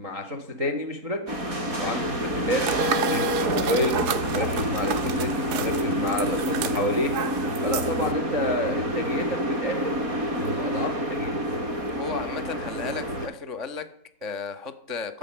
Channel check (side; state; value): left; late; 4.6 ms